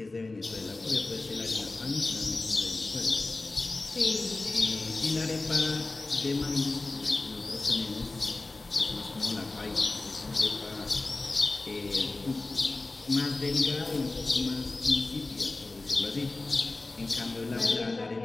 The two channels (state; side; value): quieter; right; 3.2 dB